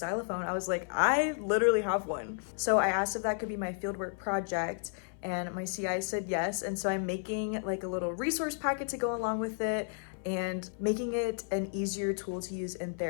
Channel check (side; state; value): right; silent; 56 dB below the other